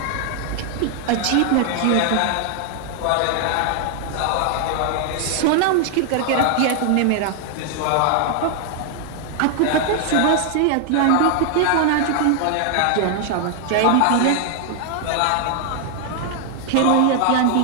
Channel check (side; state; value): both; different; correlation 0.00